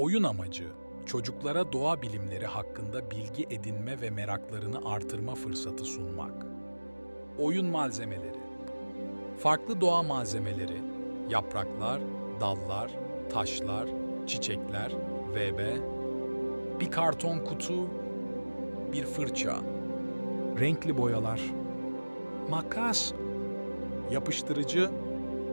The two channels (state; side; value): inverted; both; correlation -1.00